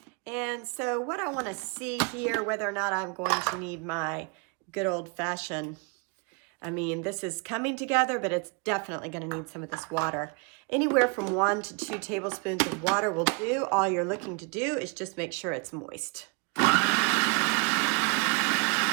and so what I want to see here, whether or not I'm going to need my good old-fashioned, I mean, this is coming together, but it's definitely going to need some of this water. Anywhere from 1 to 2 tablespoons of water will do. All you're looking to do is just make sure it's moist. All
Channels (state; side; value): quieter; left; 31.9 dB